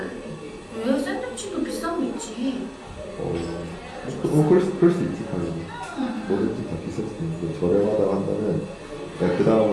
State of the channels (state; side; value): identical; both; correlation 1.00